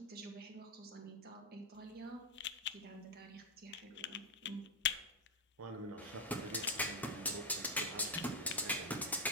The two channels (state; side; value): normal; both; correlation 0.04